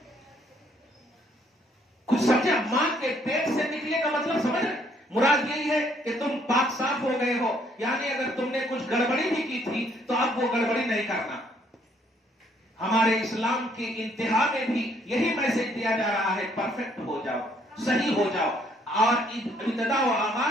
کچھ سمجھا؟ ماں کے پیٹ سے نکلے کا مطلب سمجھ رہے؟ مراد یہی ہے کہ تم پاک صاف ہو گئے ہو، یعنی اگر تم نے کچھ گڑبڑی بھی کی تھی تو اب وہ گڑبڑی نہیں کرنا. ہمارے اسلام کی انتہا میں بھی یہی میسج دیا جا رہا ہے، پرفیکٹ ہو جاؤ، صحیح ہو جاؤ. اور ابتدا و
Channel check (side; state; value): both; normal; correlation 0.66